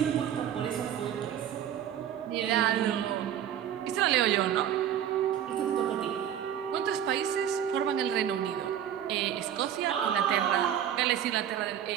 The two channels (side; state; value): left; quieter; 10.0 dB